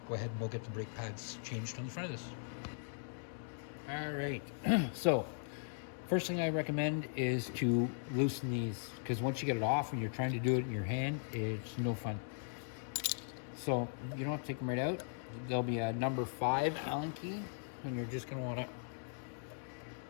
go ahead and we'll get the brake pads changed on the front of this. All right, so first thing I recommend is to loosen these, because once you get it off and you're trying to do it in your hand, it's no fun. So you don't have to take them right out. There'll be a number 5 Allen key, and you're just going to want to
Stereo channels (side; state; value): right; silent; digital silence